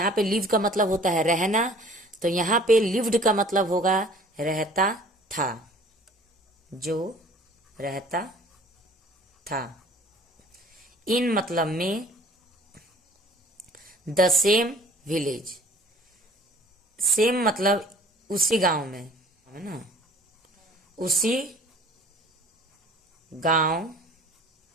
पे लिव का मतलब होता है रहना, तो यहाँ पे लिव्ड का मतलब होगा रहता था, जो रहता था। इन मतलब में द सेम विलेज। सेम मतलब उसी गांव में, है ना, उसी गांव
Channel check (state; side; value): normal; both; correlation 0.51